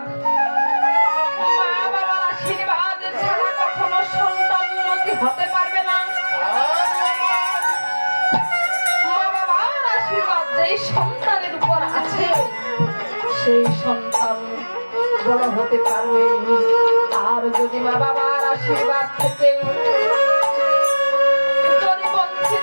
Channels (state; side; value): inverted; both; correlation -1.00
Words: মা বাবার আশীর্বাদ ছাড়া কখনো সন্তান উন্নতি হতে পারবে না। যেই সন্তানের উপর আছে সেই সন্তান বড় হতে পারবে। আর যদি মা বাবার আশীর্বাদ থেকে যদি